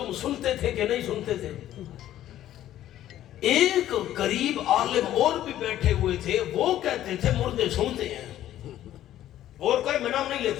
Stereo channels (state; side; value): quieter; right; 12.7 dB